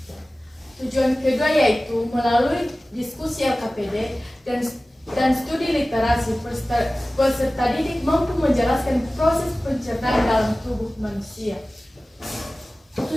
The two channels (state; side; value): normal; both; correlation 0.97